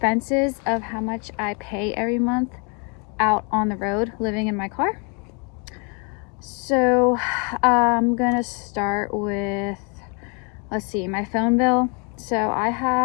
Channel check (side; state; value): right; quieter; 34.7 dB